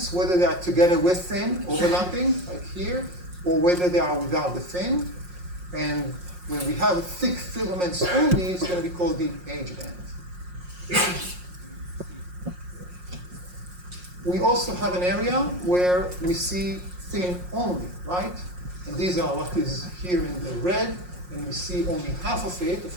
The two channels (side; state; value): left; late; 5.6 ms